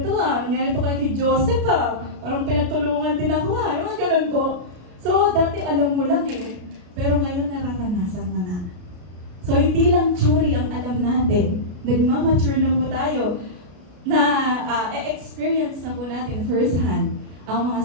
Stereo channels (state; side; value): late; left; 33 ms